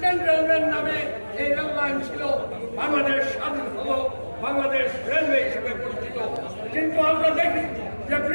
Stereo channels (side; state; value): both; inverted; correlation -1.00